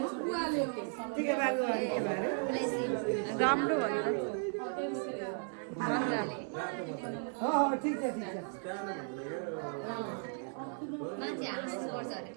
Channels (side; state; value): left; silent; 54 dB below the other